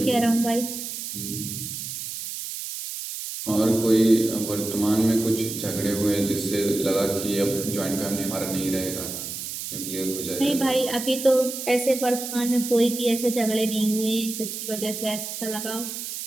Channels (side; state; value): right; noise; hiss, 7 dB below the sound